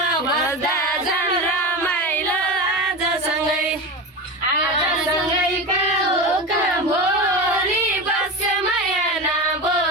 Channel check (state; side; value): normal; both; correlation 0.23